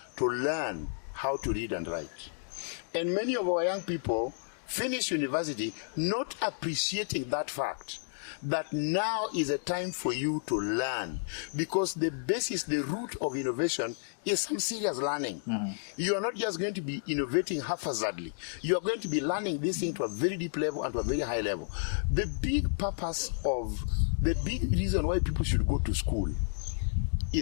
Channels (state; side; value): silent; right; digital silence